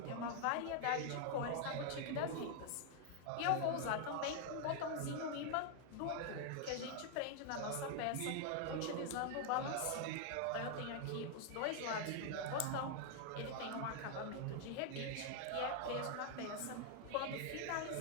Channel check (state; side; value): different; both; correlation 0.00